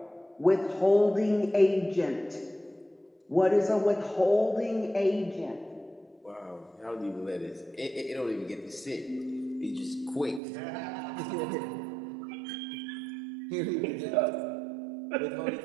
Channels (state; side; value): drops out; left; at 10.4 s